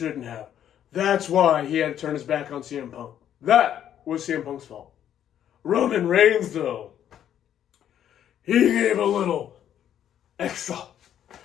have. That's why he had to turn his back on CM Punk. That was CM Punk's fault. Roman Reigns, though, he gave a little extra.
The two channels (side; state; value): right; quieter; 10.2 dB